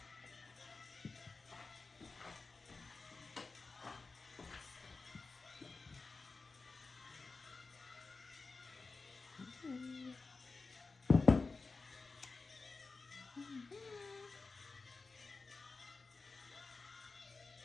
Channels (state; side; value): quieter; right; 4.0 dB